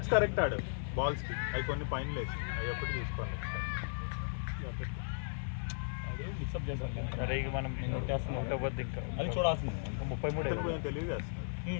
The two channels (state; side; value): silent; right; digital silence